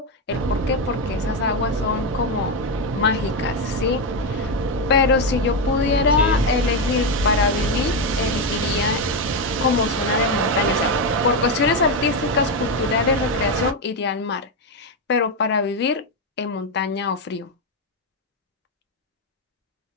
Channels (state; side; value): normal; both; correlation 0.08